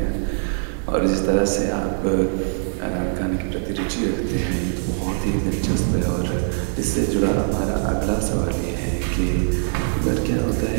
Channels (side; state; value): left; silent; digital silence